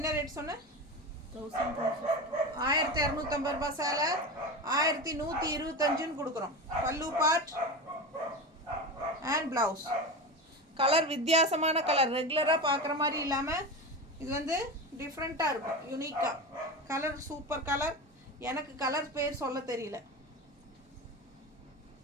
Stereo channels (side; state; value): both; normal; correlation 0.24